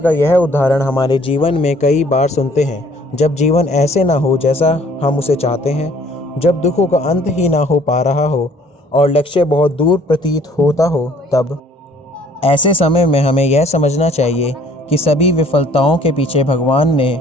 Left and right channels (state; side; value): normal; both; correlation 0.57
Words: यह उदाहरण हमारे जीवन में कई बार सुनते हैं। जब जीवन ऐसे ना हो जैसा हम उसे चाहते हैं, जब दुखों का अंत ही ना हो पा रहा हो और लक्ष्य बहुत दूर प्रतीत होता हो, तब ऐसे समय में हमें यह समझना चाहिए कि सभी विफलताओं के पीछे भगवान